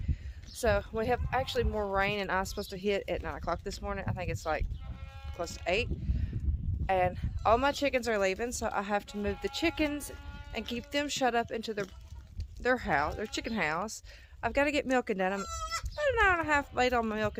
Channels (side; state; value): both; identical; correlation 1.00